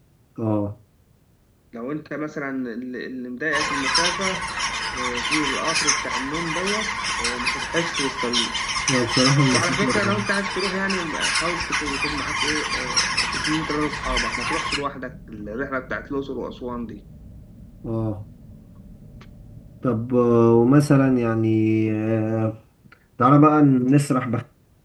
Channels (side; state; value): both; identical; correlation 1.00